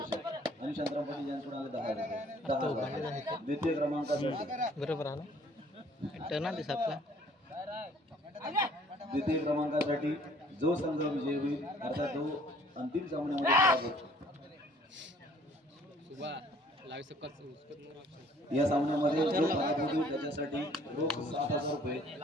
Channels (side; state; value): both; normal; correlation 0.58